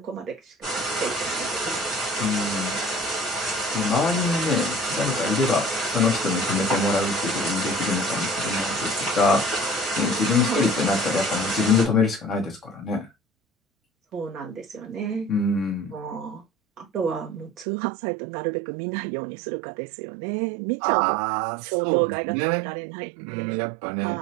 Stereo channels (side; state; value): left; drops out; at 17.7 s